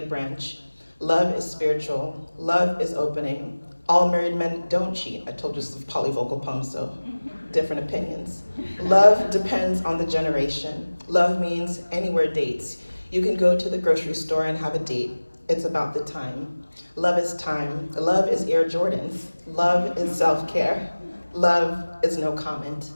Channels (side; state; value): both; inverted; correlation -1.00